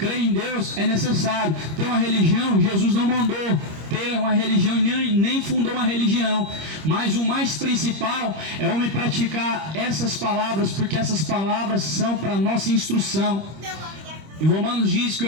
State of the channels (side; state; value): left; late; 25 ms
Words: em Deus é necessário. Ter uma religião, Jesus não mandou ter uma religião, nem fundou uma religião. Mas o mais principal é o homem praticar essas palavras, porque essas palavras são para nossa instrução. Em Romanos diz que